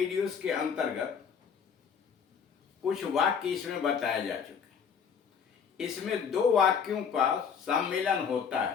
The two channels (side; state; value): right; quieter; 6.8 dB